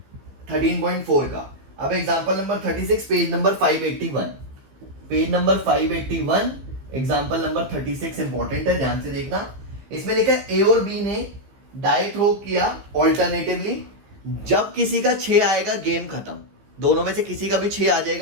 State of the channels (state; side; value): late; left; 15 ms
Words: 13.4 का। अब example number 36, page number 581, page number 581, example number 36 important है, ध्यान से देखना। इसमें लिखा है ए और बी ने डाई थ्रो किया ऑल्टरनेटिवली, जब किसी का 6 आएगा गेम खत्म, दोनों में से किसी का भी 6 आ